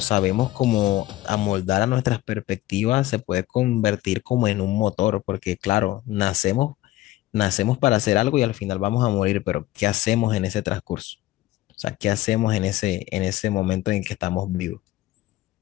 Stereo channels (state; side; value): quieter; right; 16.3 dB